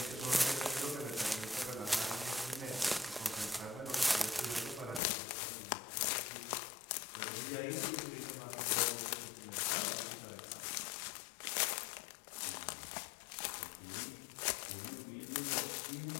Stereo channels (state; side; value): drops out; right; at 5.0 s